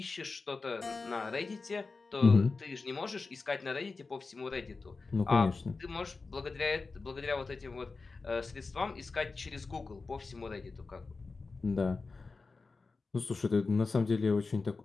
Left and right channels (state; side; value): quieter; right; 4.1 dB